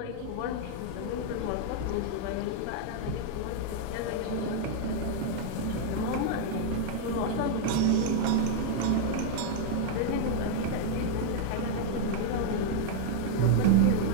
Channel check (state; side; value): different; both; correlation 0.00